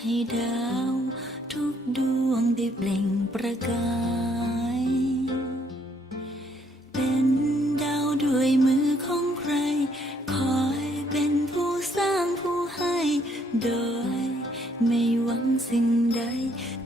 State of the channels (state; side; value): normal; both; correlation 0.68